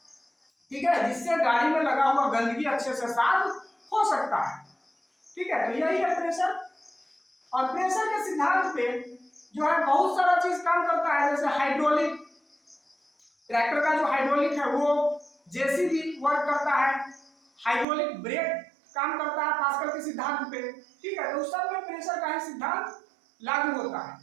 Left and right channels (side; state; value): left; drops out; at 17.9 s